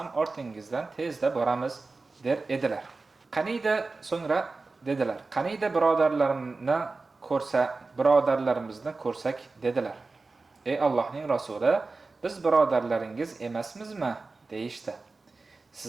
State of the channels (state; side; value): quieter; left; 3.7 dB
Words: ortingizdan tezda boramiz der edilar. Qaniyda so'ngra dedilar: Qaniyda birodarlarimizni ko'rsak dedilar. Ey Allohning rasuli, biz birodarlaringiz emasmizmi deyishdi.